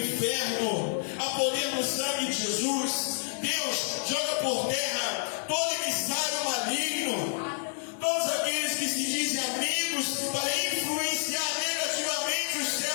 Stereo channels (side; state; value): right; silent; digital silence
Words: a poder no sangue de Jesus. Deus, joga por terra todo emissário maligno, todos aqueles que se dizem amigos para influenciar negativamente os